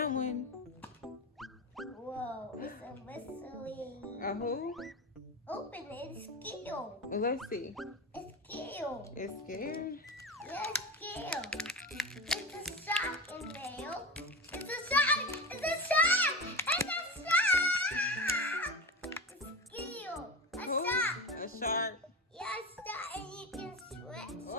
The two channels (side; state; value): both; normal; correlation 0.25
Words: one. Whoa, it's a mystery. A who? Open it, it's skill. Well, let's see. It's skill. It's scared. Yeah, skill. It's a sock in there. It's a sock. It's a sock. It's a sock. It's skill. A Who? sock. A shark. Yeah, a sock, and you can sweat.